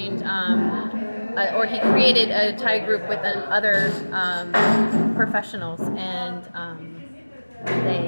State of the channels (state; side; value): inverted; both; correlation -1.00